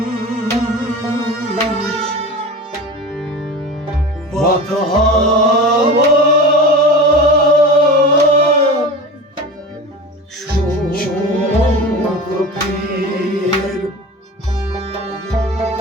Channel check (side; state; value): both; normal; correlation 0.32